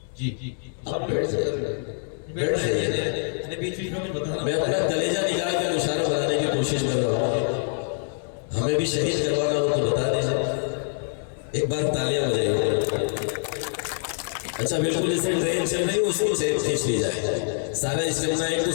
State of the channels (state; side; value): silent; right; digital silence